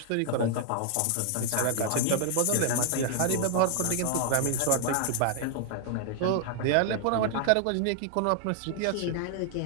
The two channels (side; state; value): both; different; correlation 0.00